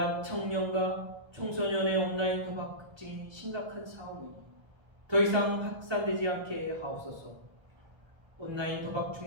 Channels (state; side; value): late; left; 1.3 ms